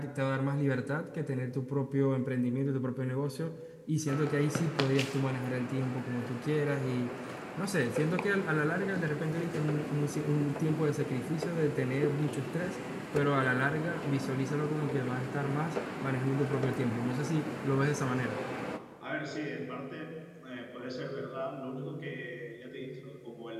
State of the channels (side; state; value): both; identical; correlation 1.00